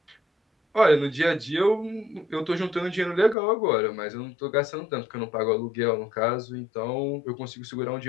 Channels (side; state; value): right; drops out; at 3.4 s